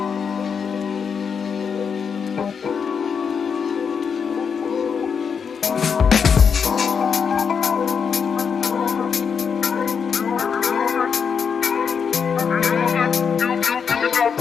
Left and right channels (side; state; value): right; quieter; 6.4 dB